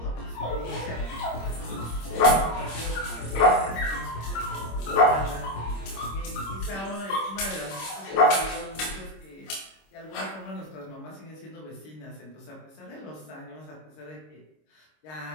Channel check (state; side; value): late; right; 26 ms